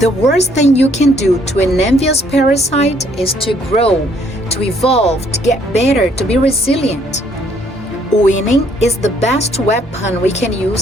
worst thing you can do to an envious parasite is to grow, to evolve, to get better, to be resilient. Winning is the best weapon we can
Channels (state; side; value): normal; both; correlation 0.65